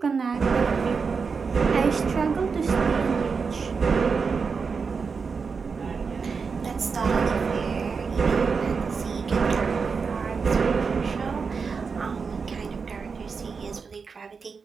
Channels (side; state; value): left; quieter; 5.2 dB